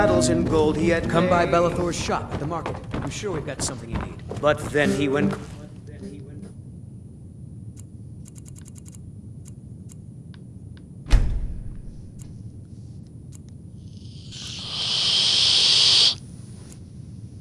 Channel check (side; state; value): both; identical; correlation 1.00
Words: and gold he had Come by made. Bellathor's shop at the market. I'm sure we've got something you need. But then he went...